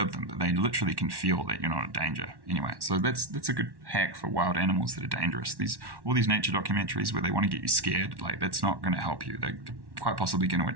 them, but they literally can feel that you're not in danger. Anyway, so that's a good hack for wild animals that are dangerous. All these nature documentaries where they want to get you scared, like that's not going to help you. They're quite possibly going to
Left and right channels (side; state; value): left; late; 1.1 ms